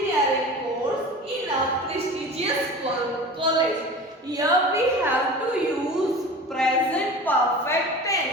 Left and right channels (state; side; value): normal; both; correlation 0.36